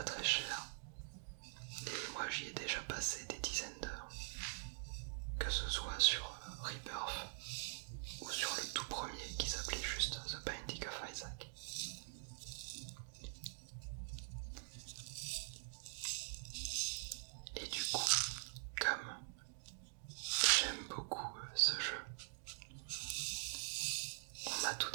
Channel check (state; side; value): silent; left; digital silence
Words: très cher. Et moi j'y ai déjà passé des dizaines d'heures. Que ce soit sur Rebirth ou sur le tout premier qui s'appelait juste The Binding of Isaac. Et du coup, comme j'aime beaucoup ce jeu, on m'a tout